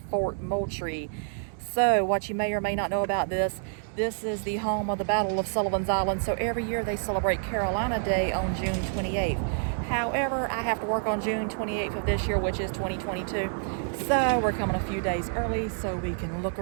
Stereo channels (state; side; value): silent; left; digital silence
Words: Fort Moultrie. So, what you may or may not know about this is the home of the Battle of Sullivan's Island, so every year they celebrate Carolina Day on June 28th. However, I have to work on June 28th of this year, which is 2022, so we're coming a few days early so we can look